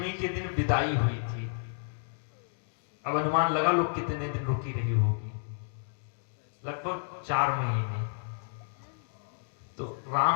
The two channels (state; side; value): silent; right; digital silence